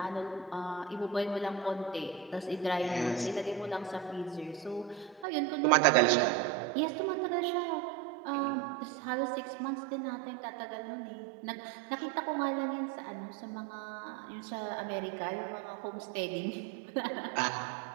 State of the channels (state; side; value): drops out; left; at 5.2 s